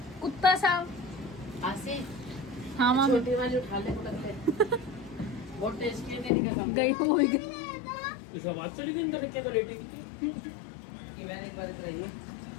कुत्ता सा। आशी हाँ माँ छोटी वाली उठा ले करके। बहुत टेस्टी है तेरी कसम। गई हो गई। इस आवाज चली गई अंदर के तो लेटी कि मैंने एक बार कराई है।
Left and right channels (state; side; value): drops out; right; at 6.3 s